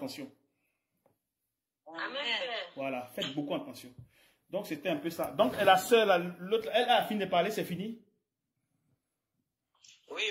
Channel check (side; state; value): both; identical; correlation 1.00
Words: Amen. Voilà, faites beaucoup attention. Donc c'était un peu ça. Donc la sœur, l'autre, elle a fini de parler, c'est fini? Oui,